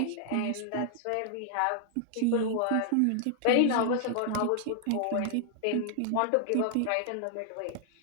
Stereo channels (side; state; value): both; different; correlation 0.00